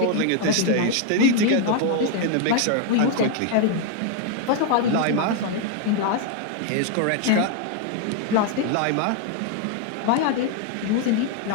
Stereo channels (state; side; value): different; both; correlation 0.00